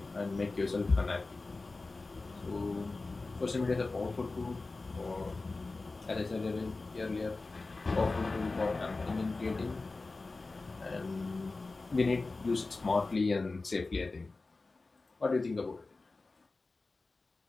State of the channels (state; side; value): quieter; right; 3.5 dB